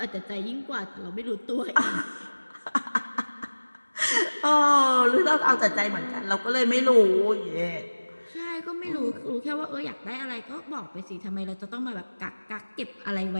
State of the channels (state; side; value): inverted; both; correlation -1.00